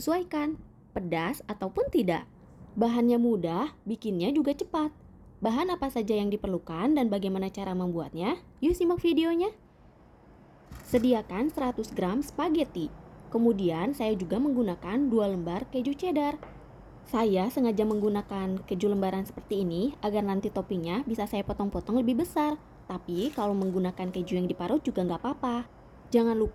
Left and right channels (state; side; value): identical; both; correlation 1.00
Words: pedas ataupun tidak. Bahannya mudah, bikinnya juga cepat. Bahan apa saja yang diperlukan dan bagaimana cara membuatnya? Yuk simak videonya. Sediakan 100 gram spaghetti. Kemudian saya juga menggunakan 2 lembar keju cheddar. Saya sengaja menggunakan keju lembaran seperti ini agar nanti toppingnya bisa saya potong-potong lebih besar. Tapi kalau menggunakan keju yang diparut juga nggak apa-apa. Jangan